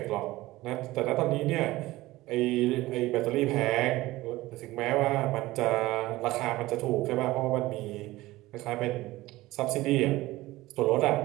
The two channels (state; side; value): quieter; left; 18.2 dB